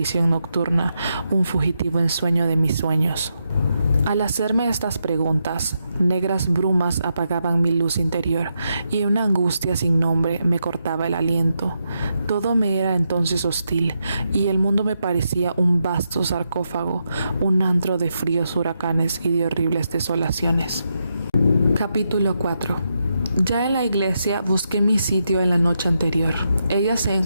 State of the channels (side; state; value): both; inverted; correlation -0.83